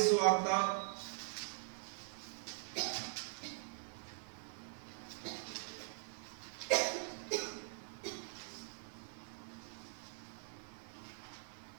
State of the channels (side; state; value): left; silent; digital silence